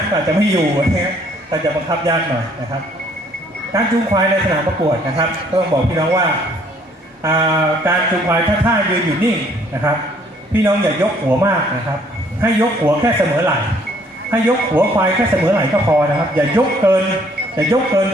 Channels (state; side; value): normal; both; correlation 0.62